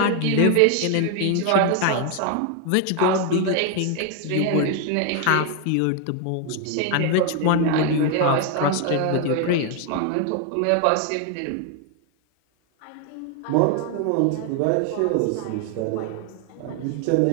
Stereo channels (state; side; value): different; both; correlation 0.00